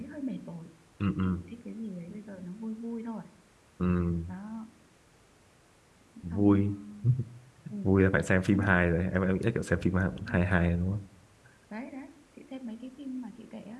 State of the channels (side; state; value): both; identical; correlation 1.00